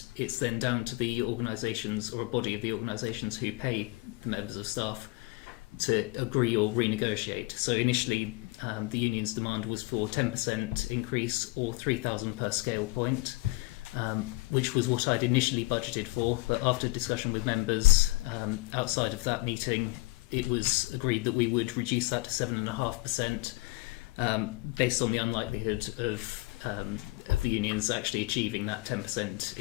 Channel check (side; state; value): right; quieter; 23.0 dB